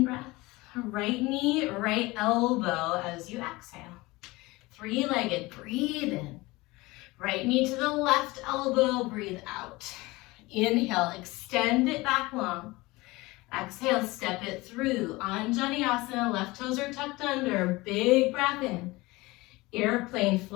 Right knee, right elbow as you exhale. Three-legged, breathe in. Right knee to the left elbow, breathe out. Inhale, extend it back long. Exhale, step it through. Anjaneyasana, left toes are tucked under. Big breath in. Airplane,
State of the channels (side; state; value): right; quieter; 21.6 dB